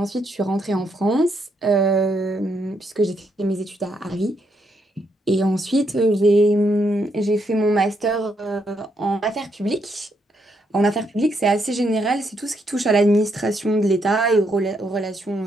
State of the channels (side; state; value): both; normal; correlation 0.76